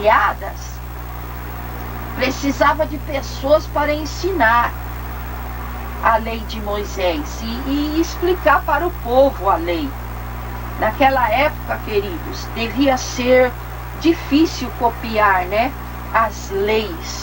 precisava de pessoas para ensinar a lei de Moisés e explicar para o povo a lei. Naquela época, queridos, devia ser difícil copiar, as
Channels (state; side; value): identical; both; correlation 1.00